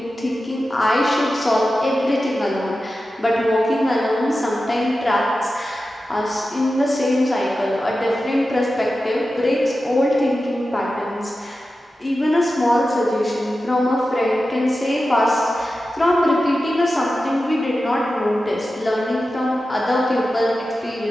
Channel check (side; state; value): both; normal; correlation 0.93